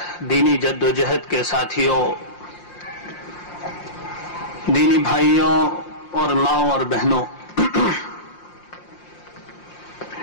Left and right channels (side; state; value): right; late; 5.7 ms